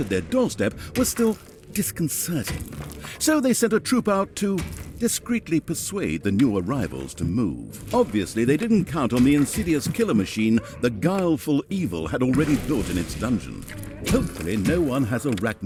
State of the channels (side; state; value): both; identical; correlation 1.00